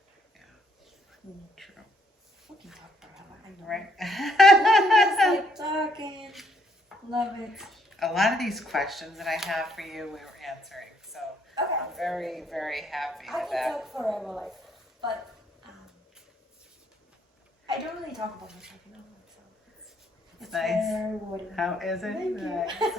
Yeah. True. We can talk forever. I know. Right. Just like talking. Love it. A lot of these questions that I have for you, we were answering. So Okay. I'm very, very happy I with can that. talk forever, like, but I don't really talk about myself, you know, so it's nice. very rewarding. How is it? Thank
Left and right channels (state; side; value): normal; both; correlation 0.69